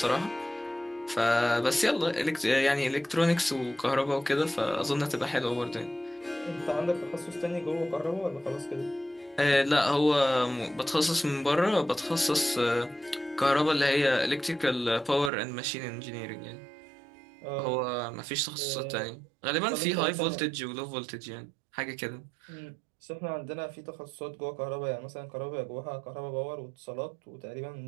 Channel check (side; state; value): left; drops out; at 15.3 s